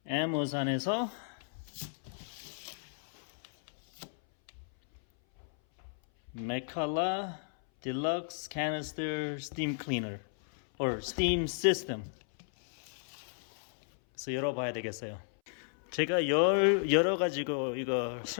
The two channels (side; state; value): right; silent; 55 dB below the other